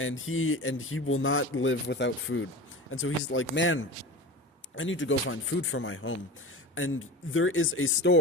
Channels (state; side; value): normal; both; correlation 0.32